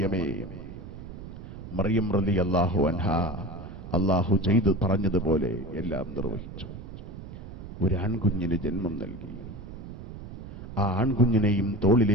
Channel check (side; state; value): right; noise; rumble, 12 dB below the sound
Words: മറിയം റളിയല്ലാഹു അൻഹാ അല്ലാഹു ചെയ്തു പറഞ്ഞതുപോലെ എല്ലാം നിർവഹിച്ചു. ഒരു ആൺകുഞ്ഞിന് ജന്മം നൽകി. ആ ആൺകുഞ്ഞിനെയും